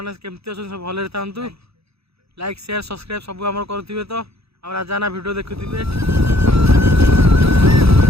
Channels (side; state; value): left; late; 0.78 ms